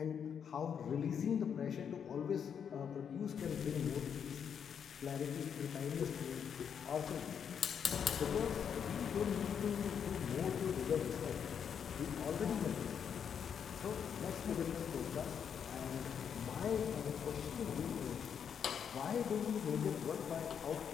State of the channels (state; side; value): quieter; right; 7.6 dB